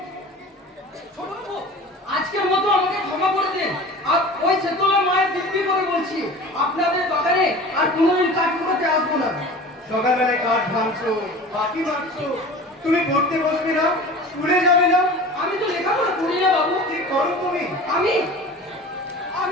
ছোট বাবু, আজকের মতো আমাকে ক্ষমা করে দিন। আর ওই সেতলা মায়ের দিব্যি করে বলছি, আপনাদের বাগানে আর কোনোদিন কাঠ করতে আসবো না। সকালবেলায় কাঠ ভাঙছো, পাখি মারছো, তুমি পড়তে বসবে না, স্কুলে যাবে না, আমি তো লেখাপড়া করি না বাবু। কি করো তুমি? আমি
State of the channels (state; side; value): normal; both; correlation 0.38